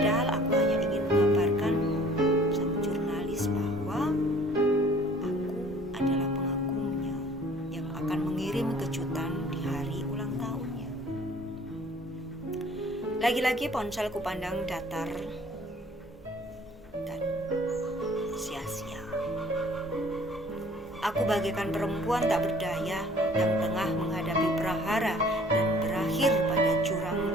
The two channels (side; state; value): both; normal; correlation 0.53